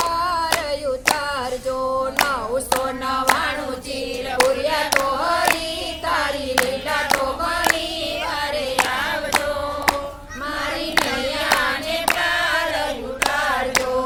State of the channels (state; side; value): identical; both; correlation 1.00